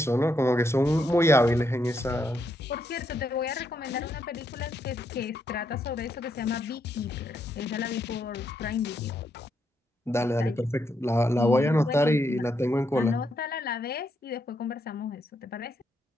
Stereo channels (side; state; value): both; normal; correlation 0.78